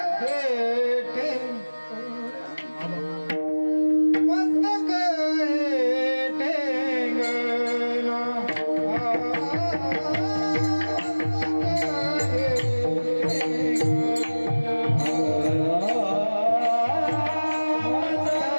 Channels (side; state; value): both; inverted; correlation -1.00